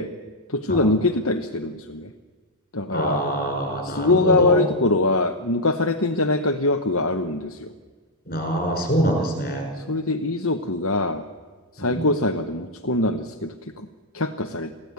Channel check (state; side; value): normal; both; correlation -0.03